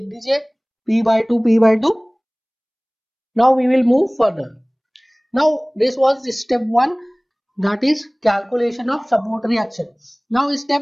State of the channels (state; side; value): identical; both; correlation 1.00